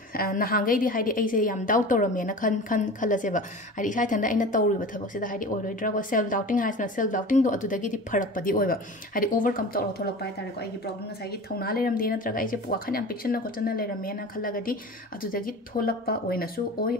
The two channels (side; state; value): both; normal; correlation 0.35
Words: नहांगै दी हाइडी ऐसे याम डाउट तोरमेना खन खलसेबा हाइडी इसा थंदा आइना तौरिबा थबक सिदा हाइडी ओइरोइद्रा को सेल्फ डाउटिंग हाइसना सेल्फ डाउटिंग दो अदुदगी दी फरकपदी ओइबा हाइडी ओवरकम तौर थोलक पाइ तारे को आइगी प्रॉब्लम नसाइ गी थौना लेरमदे नत्रगा ऐसे वाखन याम पिक्सन कोचना लेरमेना खलगदी अदुदगी थोलकपा ओइनसु ओइ